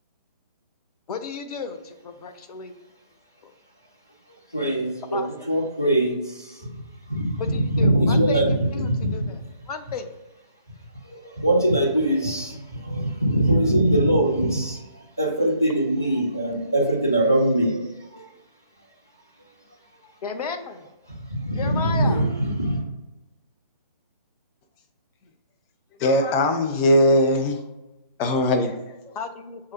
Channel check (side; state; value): both; inverted; correlation -0.63